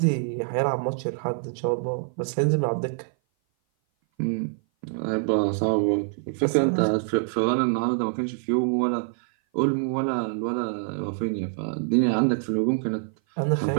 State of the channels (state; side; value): silent; left; 57 dB below the other